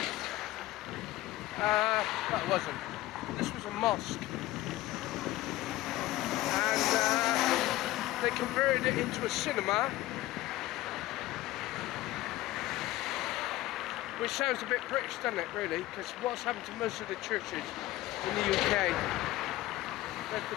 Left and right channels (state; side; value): quieter; right; 16.9 dB